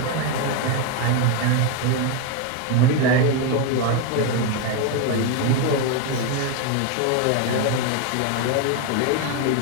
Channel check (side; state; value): both; different; correlation 0.02